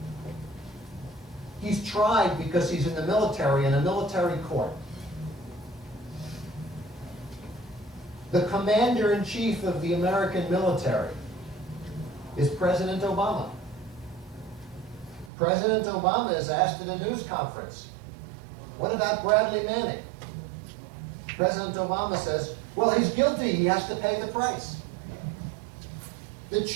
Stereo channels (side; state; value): left; drops out; at 15.3 s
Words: He's tried because he's in the military, in a military court. The commander-in-chief of the American military is President Obama. President Obama is asked at a news conference, what about Bradley Manning? President Obama says, well, he's guilty, he has to pay the price. The